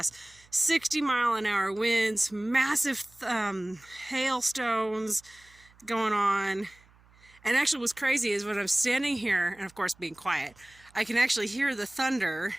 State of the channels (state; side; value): noise; right; hum, 29 dB below the sound